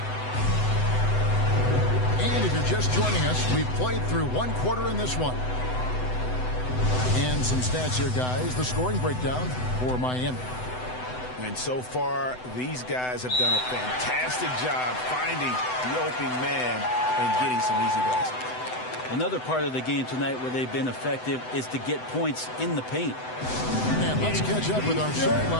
And if you're just joining us, we've played through 1 quarter in this one. And some stats here, guys. The scoring breakdown for Miami. And so far, these guys have done a fantastic job finding the open man and getting some easy baskets. Another part of the game tonight where they've been effective is to get points in the paint. And let's catch up with our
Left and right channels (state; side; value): late; right; 7.9 ms